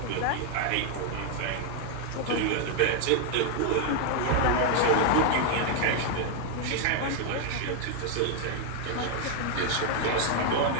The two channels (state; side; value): different; both; correlation 0.00